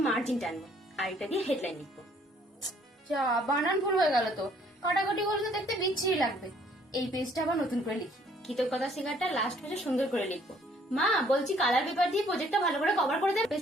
মার্জিন টানবো, আর এটা দিয়ে হেডলাইন লিখবো। যা, বানান ভুল হয়ে গেল তো। কাটাকাটি করলে তো দেখতে বিচ্ছিরি লাগবে। এই পেজটা আবার নতুন করে লিখি। কৃতজ্ঞতা শিকারটা লাস্ট পেজে সুন্দর করে লিখবো। মা, বলছি কালার পেপার দিয়ে প্রজেক্টটা ভালো করে কভার করে দেবে।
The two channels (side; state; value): both; normal; correlation 0.62